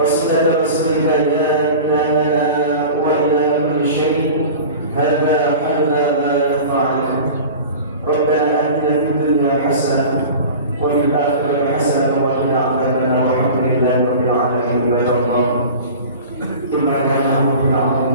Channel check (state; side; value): inverted; both; correlation -0.37